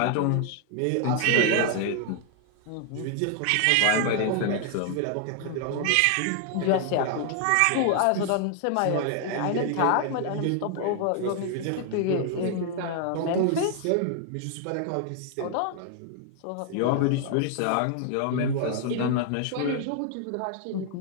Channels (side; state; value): both; different; correlation 0.00